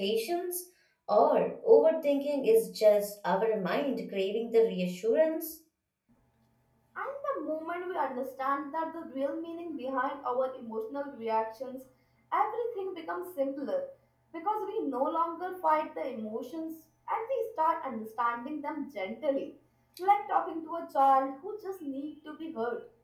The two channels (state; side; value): identical; both; correlation 1.00